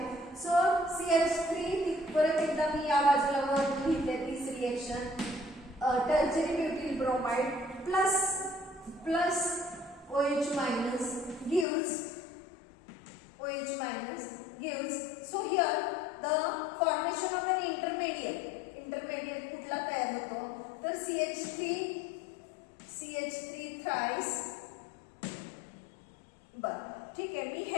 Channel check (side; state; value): right; drops out; at 11.7 s